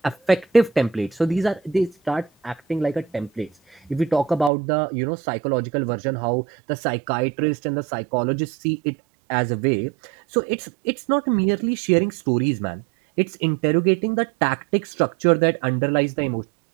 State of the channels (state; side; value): drops out; left; at 4.5 s